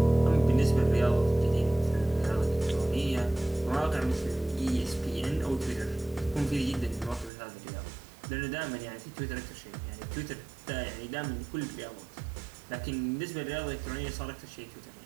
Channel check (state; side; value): drops out; left; at 7.3 s